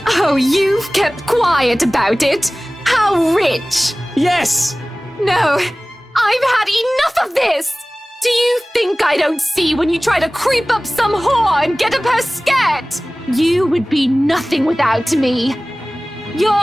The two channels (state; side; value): normal; both; correlation 0.98